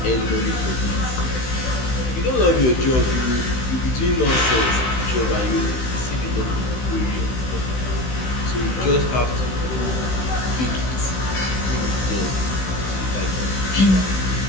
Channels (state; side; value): late; right; 16 ms